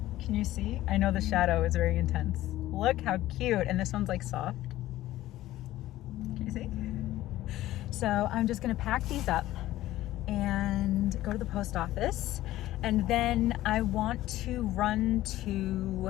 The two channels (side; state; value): right; quieter; 15.2 dB